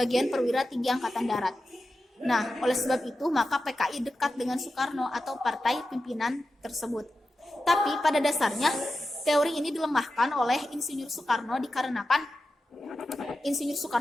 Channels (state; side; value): normal; both; correlation 0.91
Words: perwira tinggi Angkatan Darat. Nah, oleh sebab itu maka PKI dekat dengan Soekarno atau partai pimpinan tersebut. Tapi pada dasarnya teori ini dilemahkan oleh Insinyur Soekarno dikarenakan Insinyur